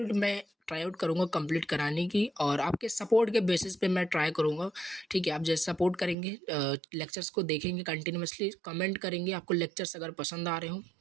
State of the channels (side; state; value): left; drops out; at 6.2 s